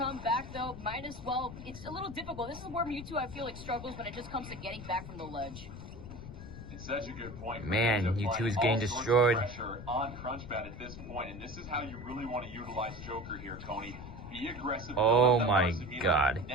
back, though, might as well. It's a little difficult. This is where Mewtwo, I feel like, struggles when it just comes to getting back from the ledge. It's such a good point. Man, Mewtwo is getting destroyed. Pressure on Crunchbat at this point, and this is how you really want to utilize Joker here, Tony. Be aggressive. Oh my God.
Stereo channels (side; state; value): left; noise; rumble, 11 dB below the sound